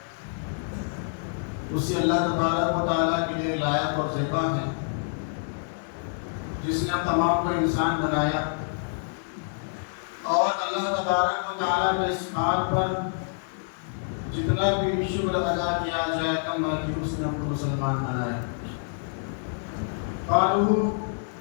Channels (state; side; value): silent; right; digital silence